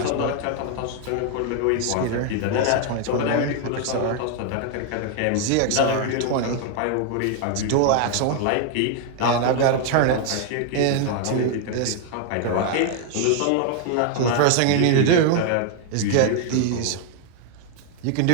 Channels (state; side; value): different; both; correlation 0.00